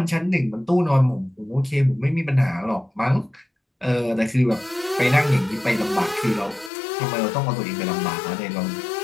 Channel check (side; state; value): right; drops out; at 6.7 s